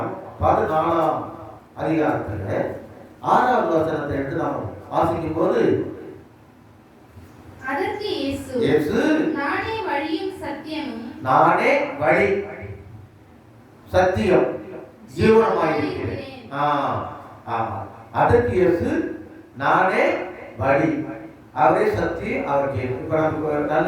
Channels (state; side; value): identical; both; correlation 1.00